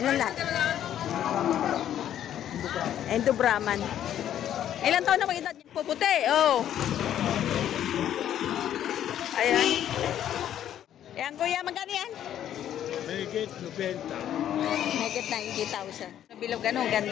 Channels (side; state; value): right; quieter; 10.8 dB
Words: Anong lahi? Endo Brahman. Ilang taon na mag-edad niyan? Puputi, oh. Ayan. Ayan, kuya, magkano yan? Megit 90. Megit 90,000. Bilog, ano,